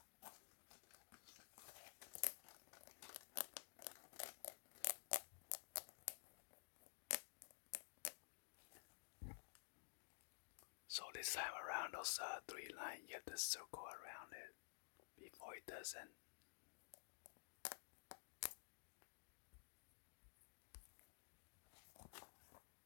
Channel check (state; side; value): silent; right; digital silence